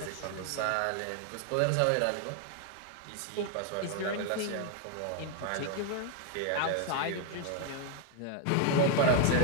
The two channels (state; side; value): different; both; correlation 0.00